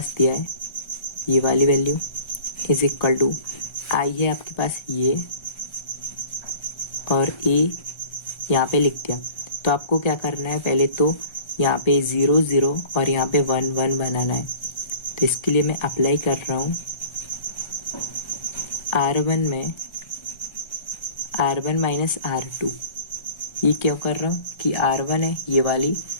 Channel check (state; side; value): late; right; 1.3 ms